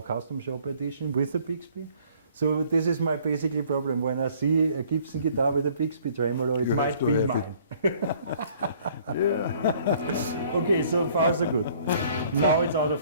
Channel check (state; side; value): inverted; both; correlation -0.58